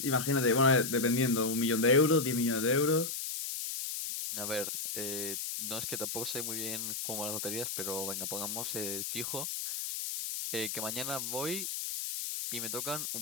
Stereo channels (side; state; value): left; noise; hiss, 4 dB below the sound